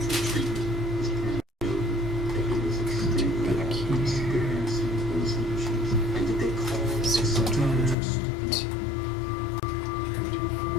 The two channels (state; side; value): drops out; right; at 8.0 s